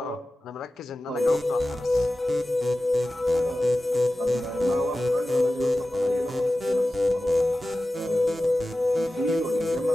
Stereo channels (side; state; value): both; normal; correlation 0.95